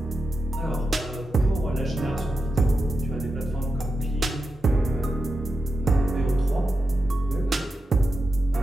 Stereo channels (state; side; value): normal; both; correlation 0.89